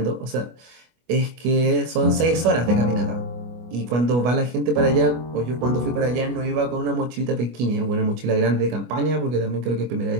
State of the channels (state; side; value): late; left; 25 ms